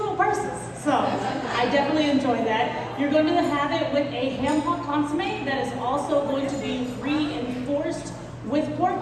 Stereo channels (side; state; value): both; identical; correlation 1.00